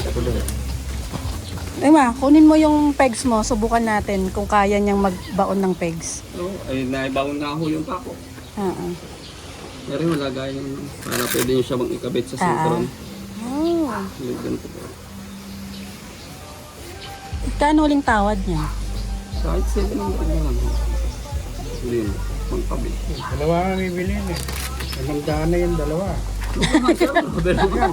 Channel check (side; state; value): both; identical; correlation 1.00